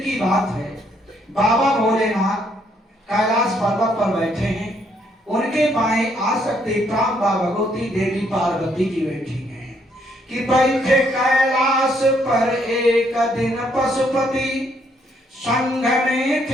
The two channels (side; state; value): both; normal; correlation 0.71